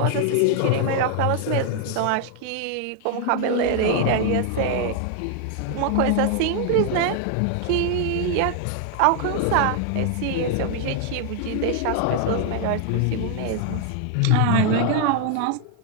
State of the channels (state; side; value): different; both; correlation 0.00